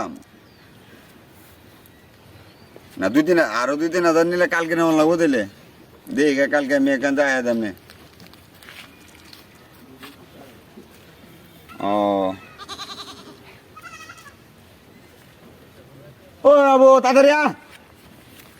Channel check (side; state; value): both; identical; correlation 1.00